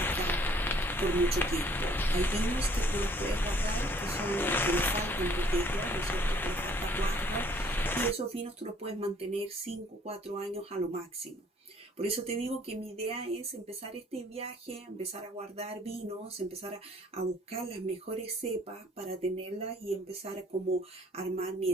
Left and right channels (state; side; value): normal; both; correlation 0.59